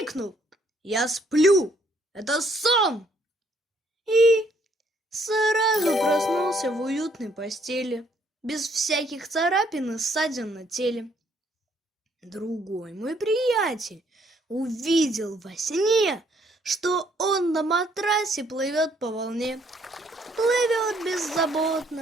«Я сплю! Это сон!» И сразу проснулся в уютной постели, без всяких царапин и ссадин на теле. Другой мой приятель увидел во сне, что он на матрасе плывет по волне. Плывет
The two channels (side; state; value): both; normal; correlation 0.67